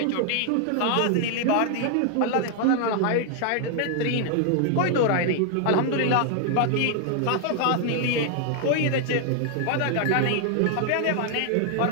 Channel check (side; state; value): both; different; correlation 0.00